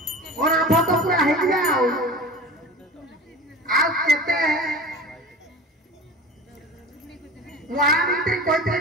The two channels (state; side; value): normal; both; correlation 0.36